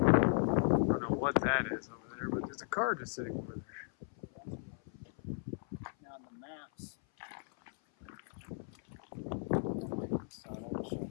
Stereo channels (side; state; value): right; silent; 53 dB below the other